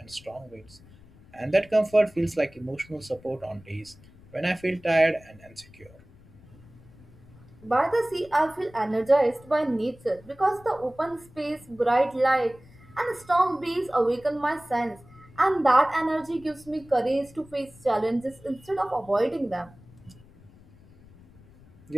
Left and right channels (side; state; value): left; noise; rumble, 24 dB below the sound